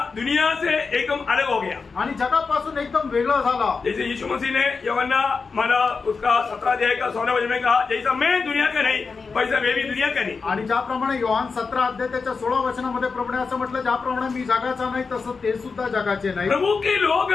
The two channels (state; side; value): quieter; right; 4.8 dB